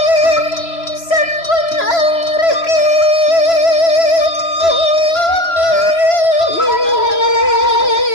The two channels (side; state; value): right; late; 3.0 ms